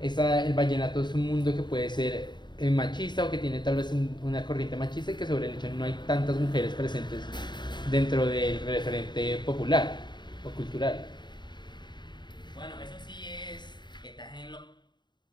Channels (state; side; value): late; right; 0.22 ms